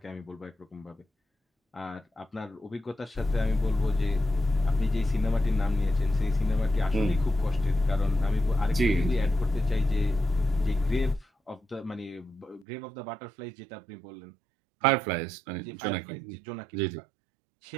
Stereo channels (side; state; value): left; drops out; at 12.7 s